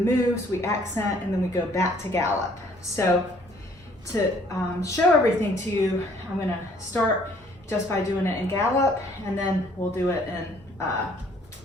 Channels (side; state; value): both; normal; correlation 0.60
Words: we accent, and then we go back to gallop. So to show everything to you, I'm gonna start just by doing it in gallop, and then we'll do it in